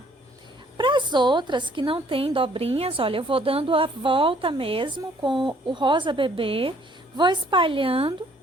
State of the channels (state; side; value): normal; both; correlation 0.62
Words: Para as outras que não tem dobrinhas, olha, eu vou dando a volta mesmo com o rosa bebê, Vou espalhando,